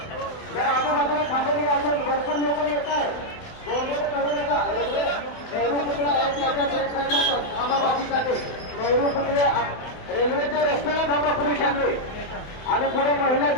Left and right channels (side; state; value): right; late; 28 ms